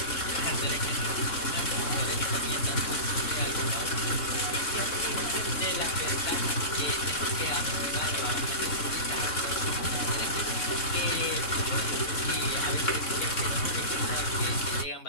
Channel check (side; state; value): right; late; 3.6 ms